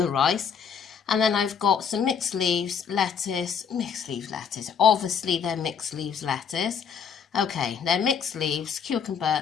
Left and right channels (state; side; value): quieter; right; 6.9 dB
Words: rice. And then I've got some mixed leaves lettuce, obviously they're mixed leaves lettuce. Okay, they're mixed leaves, cucumber